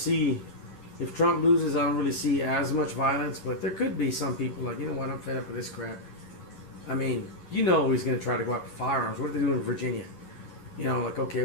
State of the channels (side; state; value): right; late; 11 ms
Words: if Trump loses, I don't really see as much violence, but there could be some people like, you know what, I'm fed up with this crap. He's going to try to go after firearms. What are they doing in Virginia? Like, okay,